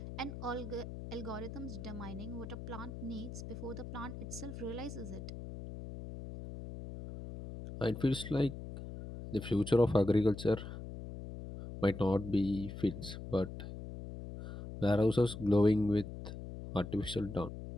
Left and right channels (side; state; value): left; noise; hum, 10 dB below the sound